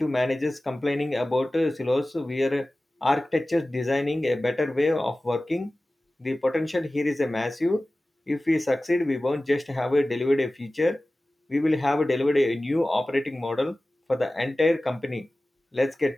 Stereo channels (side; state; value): both; normal; correlation 0.97